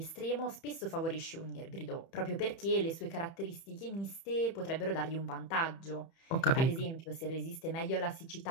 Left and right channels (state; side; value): late; right; 30 ms